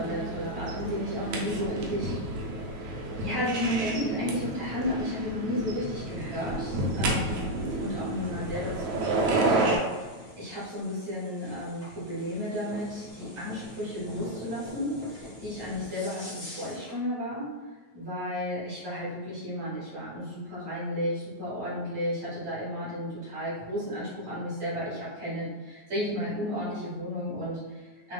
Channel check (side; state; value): left; late; 9.2 ms